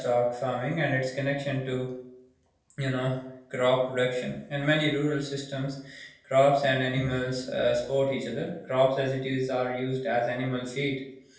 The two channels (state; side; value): identical; both; correlation 1.00